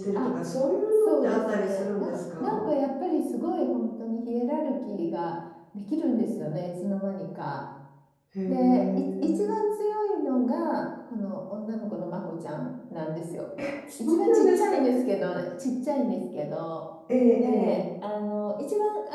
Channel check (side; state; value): both; identical; correlation 1.00